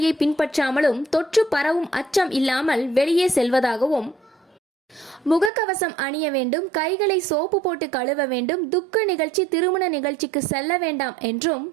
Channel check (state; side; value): drops out; left; at 5.5 s